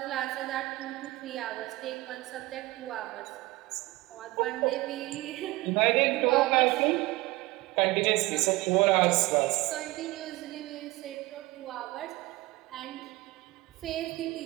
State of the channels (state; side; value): quieter; left; 20.4 dB